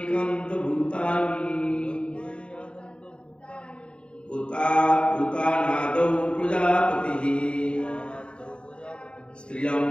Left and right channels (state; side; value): late; right; 0.055 ms